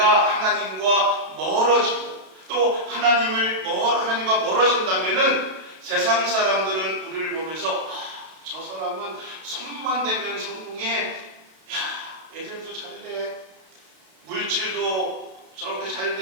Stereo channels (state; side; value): late; left; 32 ms